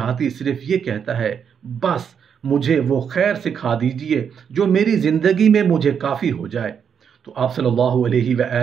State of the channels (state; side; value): quieter; left; 7.4 dB